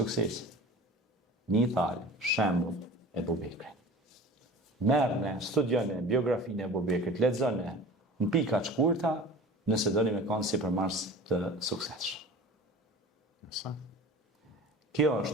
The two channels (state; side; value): normal; both; correlation 0.39